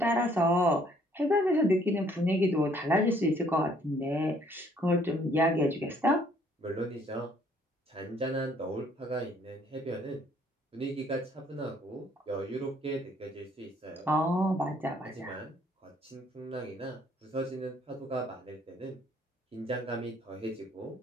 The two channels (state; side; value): normal; both; correlation 0.63